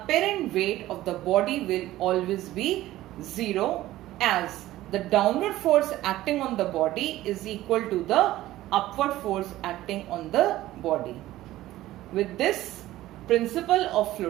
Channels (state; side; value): quieter; left; 15.5 dB